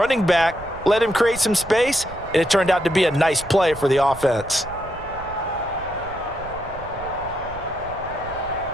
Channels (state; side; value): noise; right; rumble, 16 dB below the sound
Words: back, let him create some space, and it turned out to be a nice play for the offense.